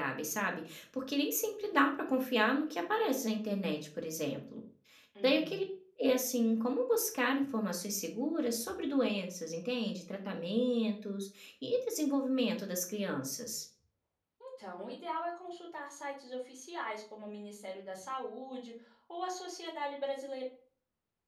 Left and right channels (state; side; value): identical; both; correlation 1.00